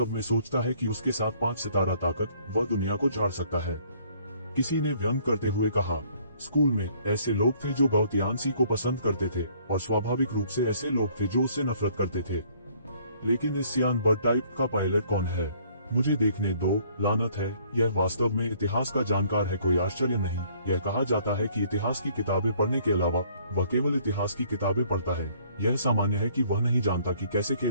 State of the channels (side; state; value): both; inverted; correlation -0.61